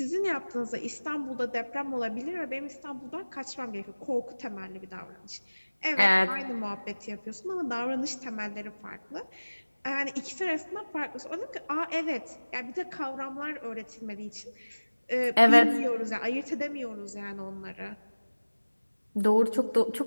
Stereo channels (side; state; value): both; inverted; correlation -1.00